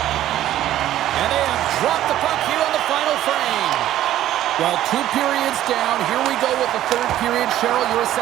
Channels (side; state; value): left; quieter; 13.0 dB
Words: And they have dropped the puck here on the final frame. Well, 2 periods down. Here we go with the 3rd period. Cheryl, your